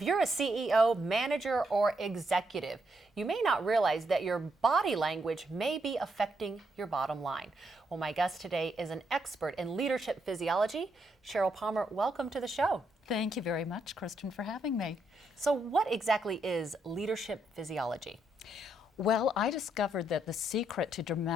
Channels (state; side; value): normal; both; correlation 0.78